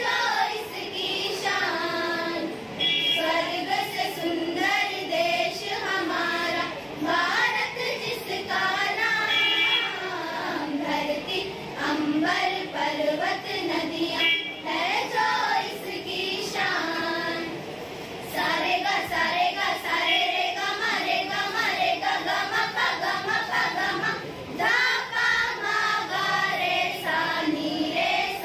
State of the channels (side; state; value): both; identical; correlation 1.00